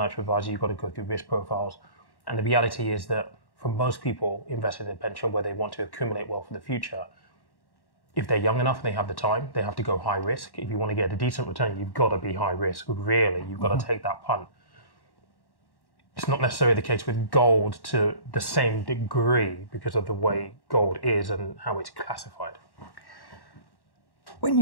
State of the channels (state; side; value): late; right; 1.1 ms